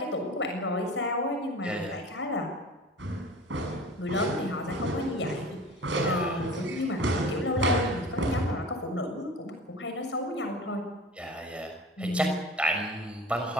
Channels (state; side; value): normal; both; correlation 0.38